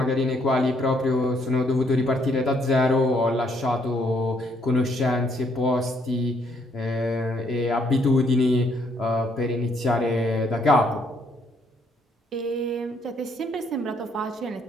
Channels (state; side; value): normal; both; correlation 0.69